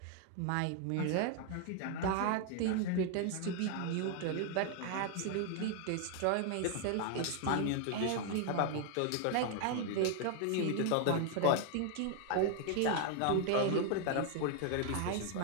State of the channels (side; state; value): both; different; correlation 0.00